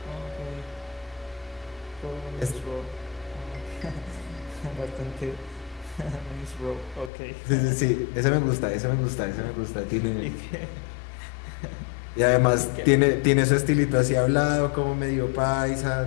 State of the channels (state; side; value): drops out; right; at 7.1 s